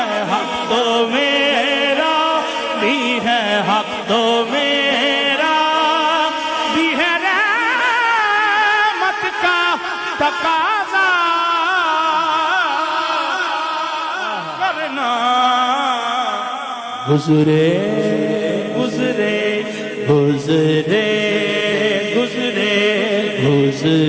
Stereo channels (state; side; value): identical; both; correlation 1.00